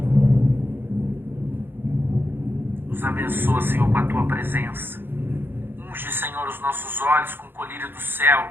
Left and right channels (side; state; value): left; late; 0.10 ms